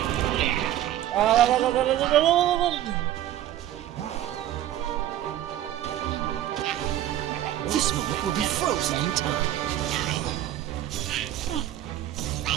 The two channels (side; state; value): left; quieter; 12.7 dB